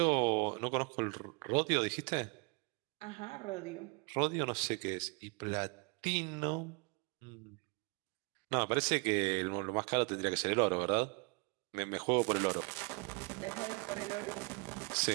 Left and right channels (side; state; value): left; quieter; 31.3 dB